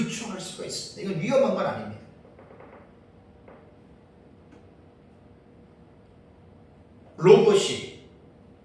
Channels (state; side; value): identical; both; correlation 1.00